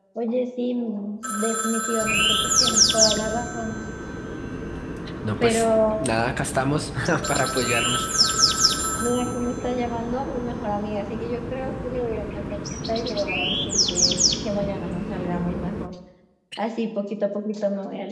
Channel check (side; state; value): both; identical; correlation 1.00